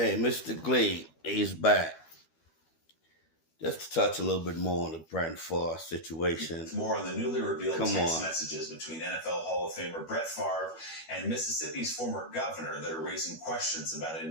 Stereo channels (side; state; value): right; late; 12 ms